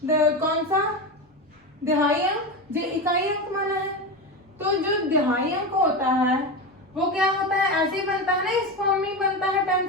कौन सा, दहाई अंक, ये इकाई अंक माना है। तो जो दहाई अंक होता है वो क्या होता है, ऐसे ही बनता है ना, इस फॉर्म में ही बनता है,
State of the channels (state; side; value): normal; both; correlation 0.20